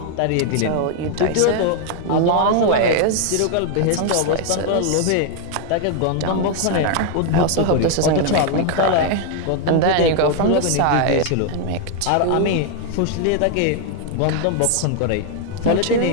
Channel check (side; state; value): both; different; correlation 0.00